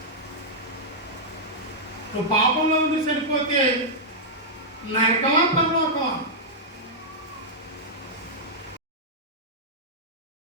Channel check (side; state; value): both; normal; correlation -0.08